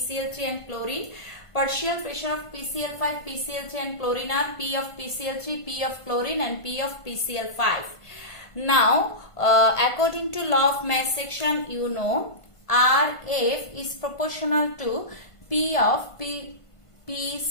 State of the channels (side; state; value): right; late; 1.5 ms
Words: and chlorine. Partial pressure of PCl5, PCl3 and chlorine are P of PCl3, P of chlorine and P of PCl5. Now, according to law of mass action, you know Rf is proportional to P of